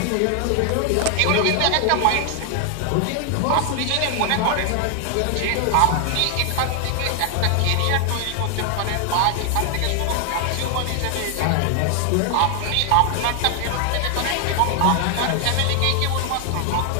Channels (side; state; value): both; different; correlation 0.00